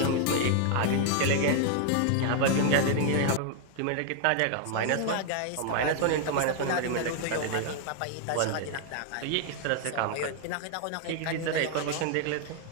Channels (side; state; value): both; different; correlation 0.00